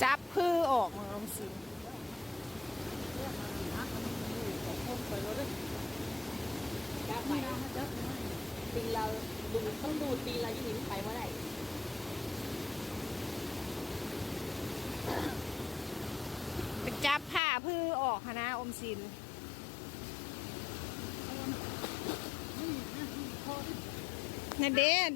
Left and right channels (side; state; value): right; drops out; at 17.4 s